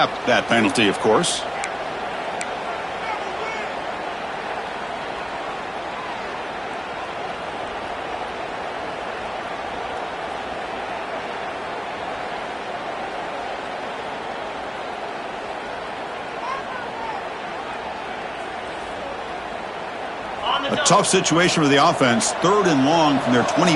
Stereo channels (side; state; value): both; identical; correlation 1.00